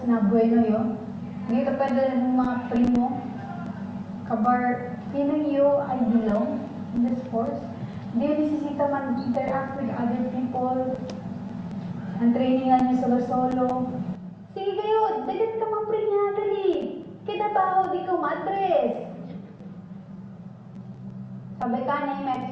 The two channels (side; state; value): both; identical; correlation 1.00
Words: na bueno yun. Hindi ka pwede ng mga primo. Kabar, feeling you I belong in the sports. Hindi yung nisisita man interact with other people. Ang trainingan niyo solo-solo. Sige kayo, dagat ka mamprinya, dali. Kinabaho di ko madres. Sabi ka na yung